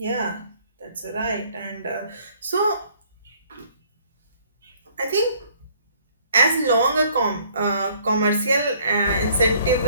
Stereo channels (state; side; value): inverted; both; correlation -0.59